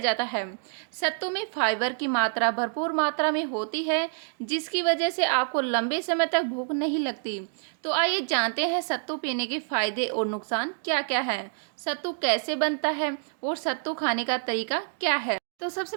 है। सत्तू में फाइबर की मात्रा भरपूर मात्रा में होती है जिसकी वजह से आपको लंबे समय तक भूख नहीं लगती। तो आइए जानते हैं सत्तू पीने के फायदे और नुकसान क्या क्या है, सत्तू कैसे बनता है और सत्तू खाने का तरीका क्या है। तो सबसे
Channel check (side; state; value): left; silent; digital silence